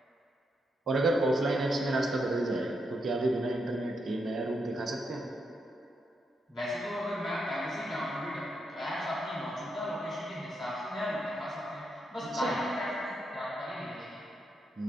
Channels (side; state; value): both; normal; correlation 0.81